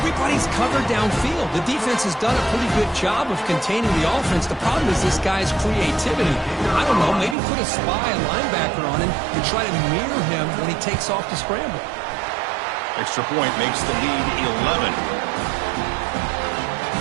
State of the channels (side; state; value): left; drops out; at 7.4 s